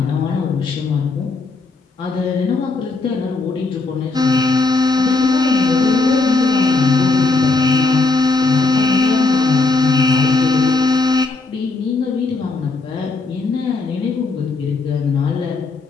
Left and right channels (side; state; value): right; quieter; 3.7 dB